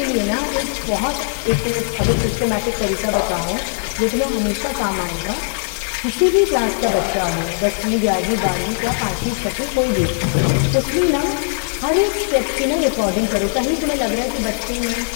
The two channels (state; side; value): silent; right; digital silence